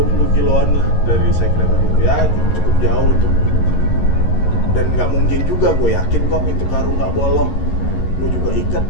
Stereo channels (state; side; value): late; right; 11 ms